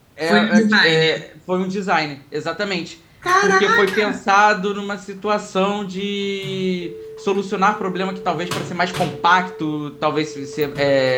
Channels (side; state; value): both; identical; correlation 1.00